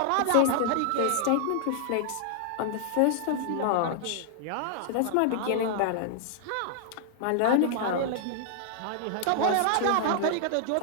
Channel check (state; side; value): different; both; correlation -0.01